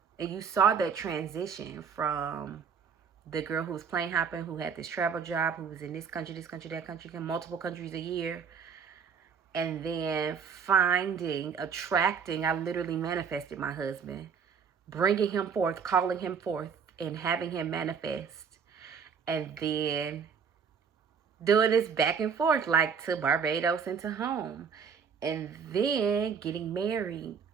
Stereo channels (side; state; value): left; quieter; 6.5 dB